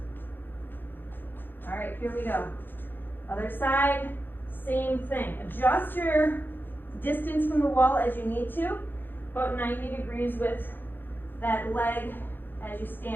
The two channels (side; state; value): right; late; 0.096 ms